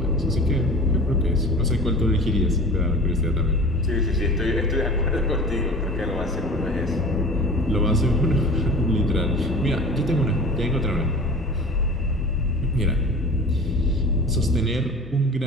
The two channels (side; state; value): both; normal; correlation 0.38